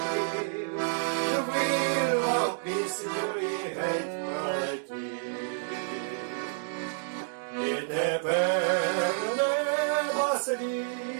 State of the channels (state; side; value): silent; left; 58 dB below the other